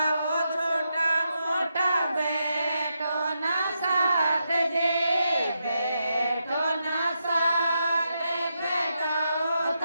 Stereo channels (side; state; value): both; inverted; correlation -0.84